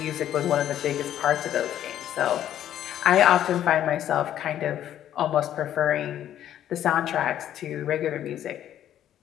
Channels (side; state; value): right; quieter; 11.2 dB